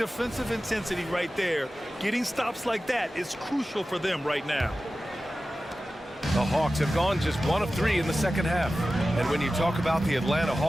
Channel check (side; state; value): both; normal; correlation 0.95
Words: intensity right there. Getting stops like that is crucial for them right now. The Hawks have gone just 1 of 3 in the second half. And when you talk about the Atlanta